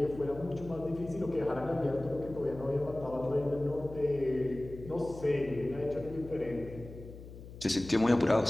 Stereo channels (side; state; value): left; noise; hum, 15 dB below the sound